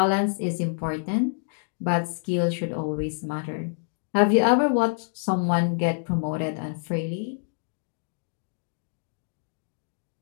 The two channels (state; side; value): silent; right; digital silence